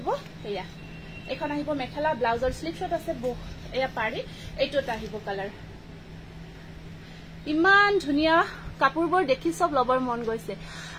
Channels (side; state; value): both; identical; correlation 1.00